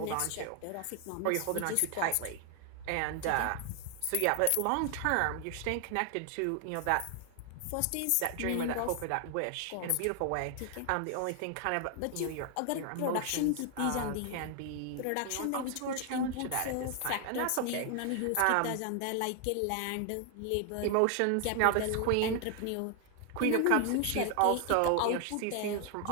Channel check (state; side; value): different; both; correlation 0.00